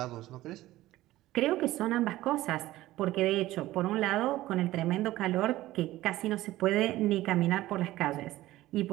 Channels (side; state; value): left; quieter; 16.2 dB